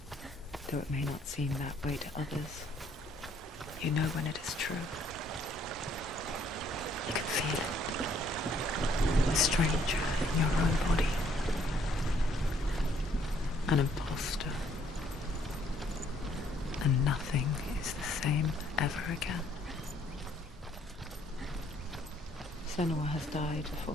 Though it may not seem that way to others, you know when it is true. You can feel it. A stranger in your own body. An imposter. And nothing is the same ever again. Senua has died before.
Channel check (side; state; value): both; normal; correlation 0.65